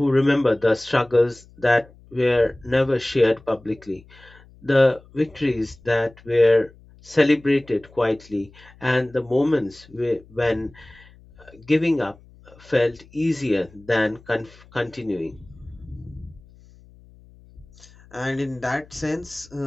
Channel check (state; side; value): noise; left; hum, 25 dB below the sound